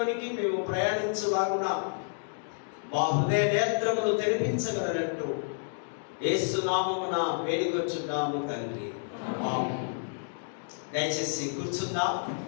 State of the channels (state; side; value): silent; right; digital silence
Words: మేము ప్రయాణించులాగున మా హృదయ నేత్రములు తెరిపించగలనట్టు యేసు నామమున వేడుకొచ్చున్నాము తండ్రి. ఆమేన్. దయచేసి కూర్చుందాం.